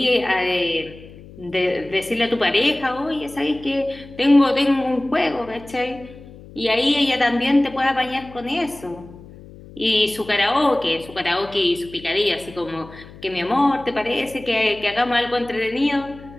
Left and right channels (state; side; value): noise; left; hum, 19 dB below the sound